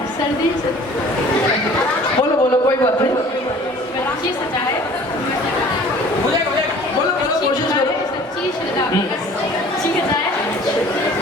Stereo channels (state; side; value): normal; both; correlation 0.49